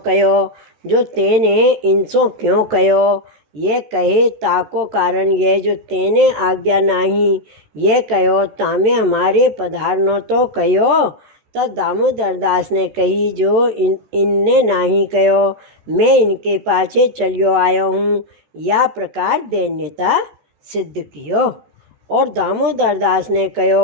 जो तेने इनसो क्यों कहो? ये कहे ताको कारण ये, जो तेने आज्ञा नहीं ये कहो, तामे हमारे पधारनो तो कहो। तब दामोदर दास ने कही, जो इनने नहीं कहो, मैं इनके पाछे चलियो आयो हूँ। या प्रकार दैन्यता सिद्ध कियो। और दामोदर दास ने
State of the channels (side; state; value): left; late; 14 ms